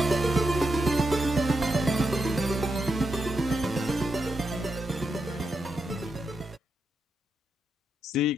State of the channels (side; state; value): both; normal; correlation 0.83